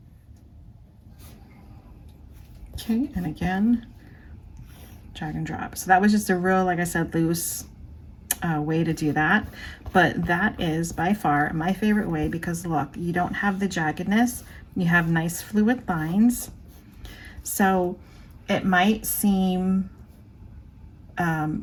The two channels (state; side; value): identical; both; correlation 1.00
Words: Okay, and again, drag and drop. So that was just a real, like I said, loose way to do that. But that is by far my favorite way because look, you don't have the jaggedness, you have nice fluid lines. So it might seem,